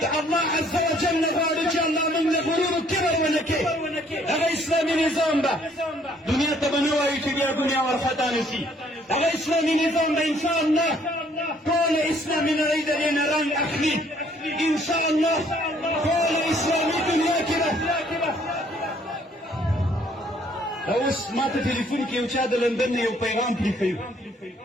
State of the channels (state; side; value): normal; both; correlation 0.63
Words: د الله عز وجل غواړي چې الله موږ له غرور و کبر ونه کړي. هغه اسلامي نظام به دنیا ته به نه وایي چې بیا دنیا ورخطا نه شي. هغه اسلامي نظام به ان شاء الله ټول اسلامي نړۍ د دې نه رنګ اخلي. ان شاء الله ټول اسلامي دنیا کې به اوس ما ته ټلیفون کې یو چا د لندن نه یو پیغام پرېښی